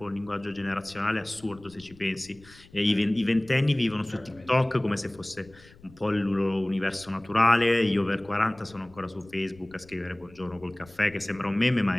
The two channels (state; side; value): noise; left; rumble, 24 dB below the sound